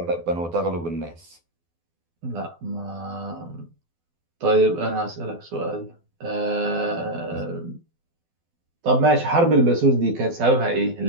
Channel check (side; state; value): left; late; 12 ms